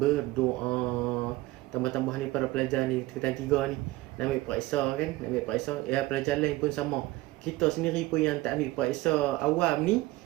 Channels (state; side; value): quieter; left; 18.9 dB